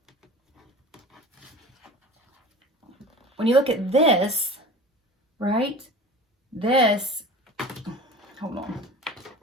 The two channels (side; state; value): both; normal; correlation 0.38